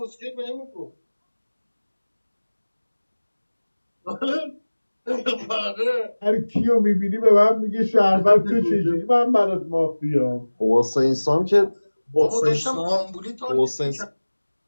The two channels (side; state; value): both; inverted; correlation -1.00